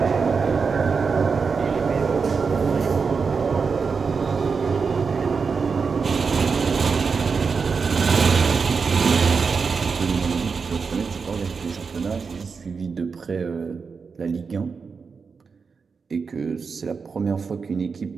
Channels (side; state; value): left; quieter; 5.3 dB